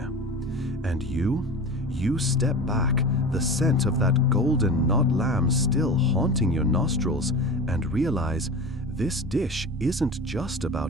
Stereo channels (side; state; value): both; normal; correlation 0.31